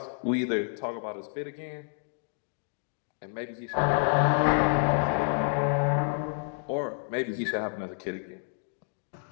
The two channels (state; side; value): silent; right; 58 dB below the other